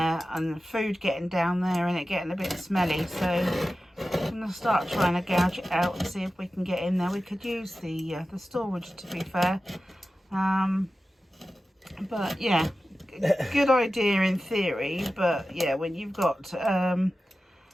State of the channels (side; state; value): both; normal; correlation 0.94